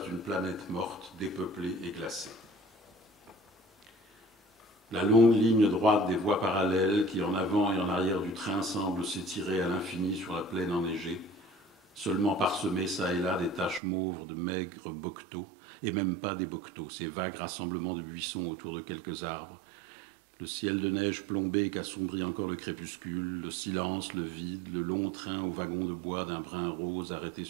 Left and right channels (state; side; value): drops out; left; at 13.8 s